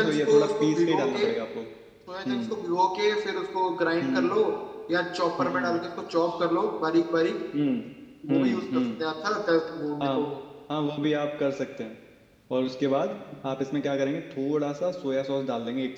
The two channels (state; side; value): identical; both; correlation 1.00